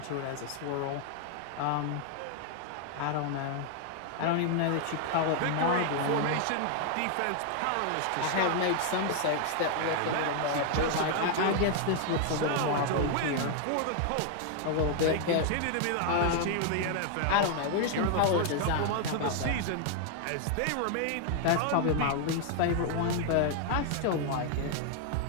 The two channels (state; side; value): different; both; correlation 0.00